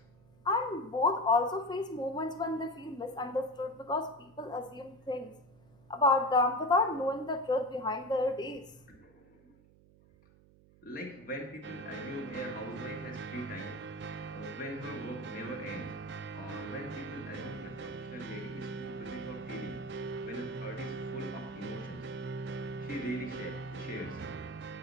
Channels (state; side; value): noise; right; hum, 26 dB below the sound